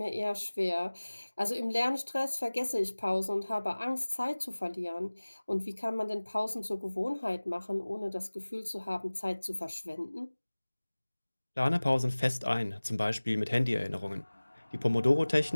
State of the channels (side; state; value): both; inverted; correlation -1.00